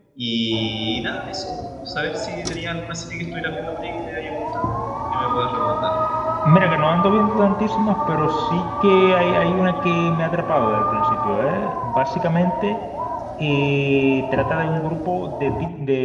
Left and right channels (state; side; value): identical; both; correlation 1.00